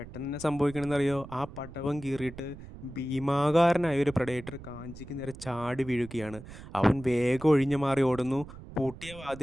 തന്നെ സംഭവിക്കണമെന്നറിയോ, ആ പടവം കീറിയിട്ട് ഭീമാകാരനായ ഒരു പ്രഡേറ്റർ കാഞ്ചിക്ക് നേരെ ചാടി വീഴുകയാണ്. അവൻ വേഗം ഒഴിഞ്ഞു മാറി ഓടുന്നു. പൂട്ടിയ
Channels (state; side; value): noise; right; rumble, 15 dB below the sound